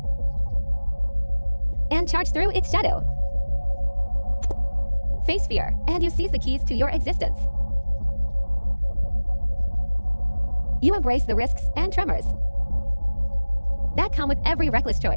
and charge through its shadow. Face fear, and you seize the keys to your existence. You embrace the risks and tremors, that come with every reckless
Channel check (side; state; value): both; inverted; correlation -1.00